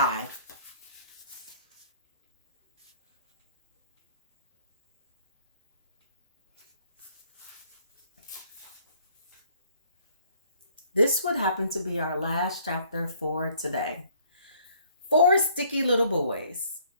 This would happen to be our last chapter for today. 4 sticky little boys.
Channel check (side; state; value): both; inverted; correlation -0.61